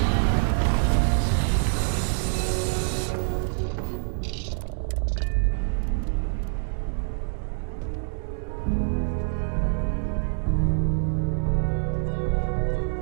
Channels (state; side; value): silent; left; digital silence